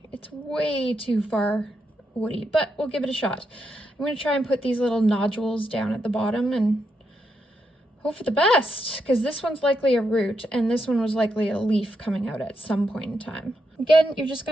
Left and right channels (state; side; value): normal; both; correlation 0.82